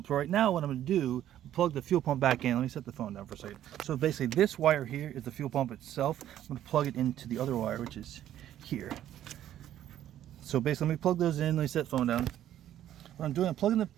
So right now what I'm going to do, plug the fuel pump back in. Let me set the phone down for a second. So basically this wire here is the fuel pump itself. I'm going to plug it into the other wire, which is here. So basically let me plug those in. Let me set the phone down. What I'm doing, I'm plugging the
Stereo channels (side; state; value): left; quieter; 11.8 dB